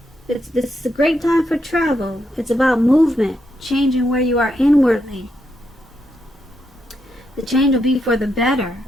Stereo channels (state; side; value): normal; both; correlation 0.81